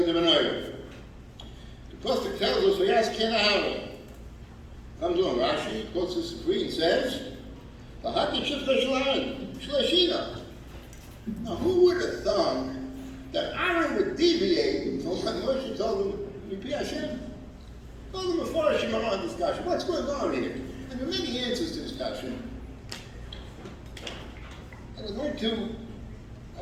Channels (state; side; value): identical; both; correlation 1.00